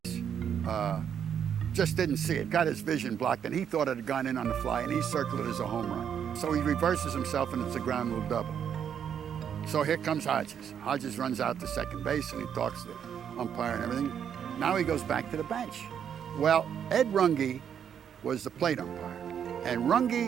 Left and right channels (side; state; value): left; quieter; 8.4 dB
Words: just didn't see it, got his vision blocked, and he thought it had gone in on the fly, and he circled it as a home run. So he reverses himself, and it's a ground rule double. So here comes Hodges. Hodges runs out to second base, and he talks to the umpire and everything. Now he goes back to the bench. Well, Ed Runge was the plate umpire. And